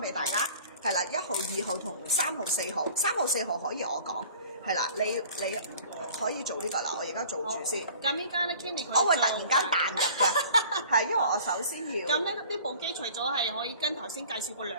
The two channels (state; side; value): inverted; both; correlation -0.47